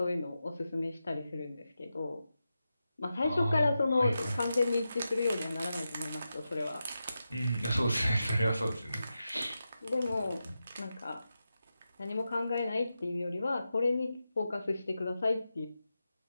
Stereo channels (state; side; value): inverted; both; correlation -0.90